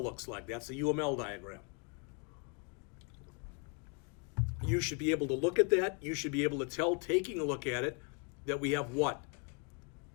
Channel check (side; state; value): right; quieter; 37.4 dB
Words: looks like. That's the UML diagram. You should be able to look at that. You should be able to tell, taking a look at it, that we have what?